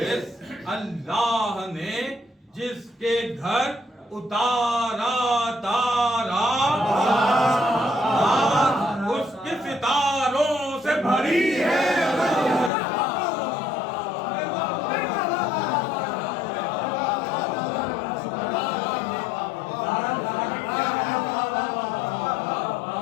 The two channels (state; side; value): drops out; right; at 12.7 s